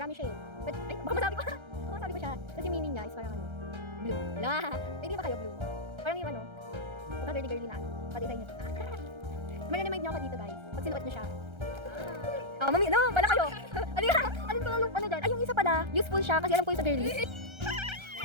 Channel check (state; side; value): late; left; 1.3 ms